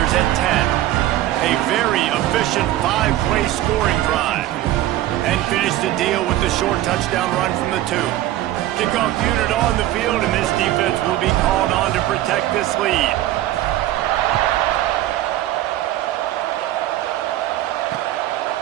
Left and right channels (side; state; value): left; quieter; 14.4 dB